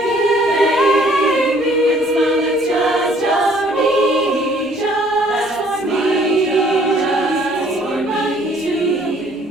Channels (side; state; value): both; normal; correlation 0.59